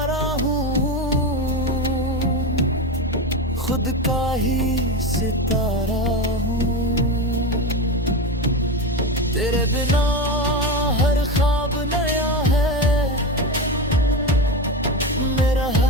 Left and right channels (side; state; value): both; normal; correlation 0.19